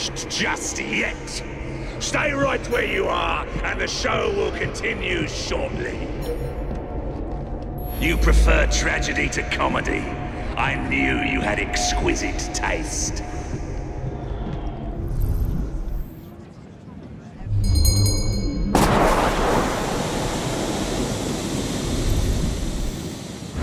just yet. Stay right where you are, and the show will continue shortly. You prefer tragedy to comedy. I knew you had exquisite taste.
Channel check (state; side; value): identical; both; correlation 1.00